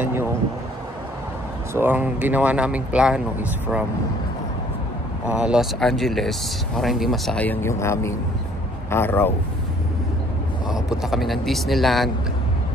yung, so ang ginawa naming plano is from Los Angeles para hindi masayang yung aming araw. Punta kami ng Disneyland,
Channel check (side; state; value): both; normal; correlation 0.59